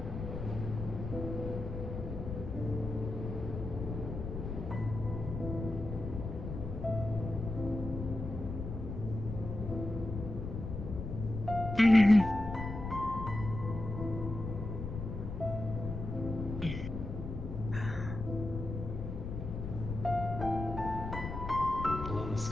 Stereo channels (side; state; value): left; noise; rumble, 6 dB below the sound